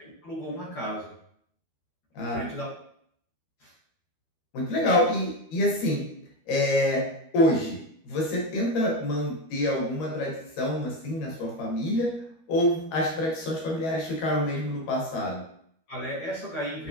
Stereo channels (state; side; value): late; right; 12 ms